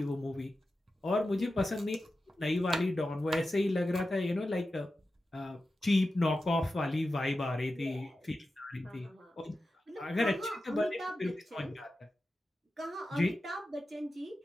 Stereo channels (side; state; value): both; normal; correlation 0.92